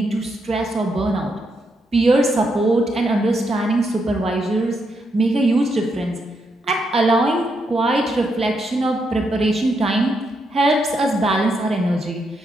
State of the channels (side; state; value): both; normal; correlation 0.80